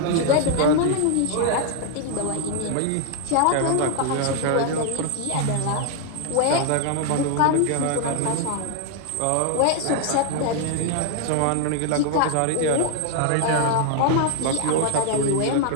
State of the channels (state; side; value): different; both; correlation 0.00